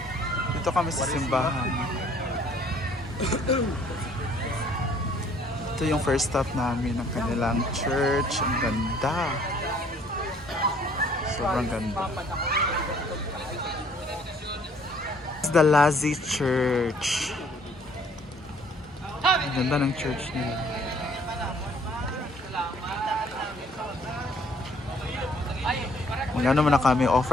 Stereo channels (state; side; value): normal; both; correlation 0.60